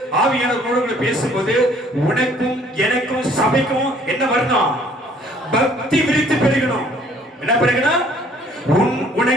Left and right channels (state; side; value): normal; both; correlation 0.58